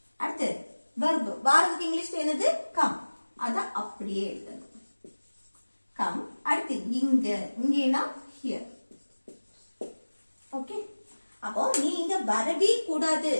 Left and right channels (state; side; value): inverted; both; correlation -1.00